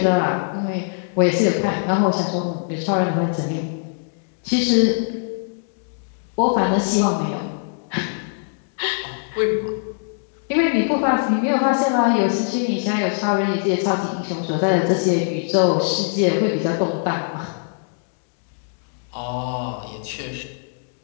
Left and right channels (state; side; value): silent; right; digital silence